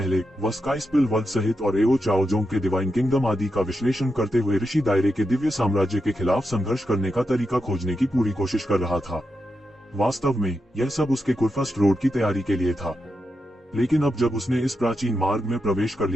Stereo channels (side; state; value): both; normal; correlation 0.86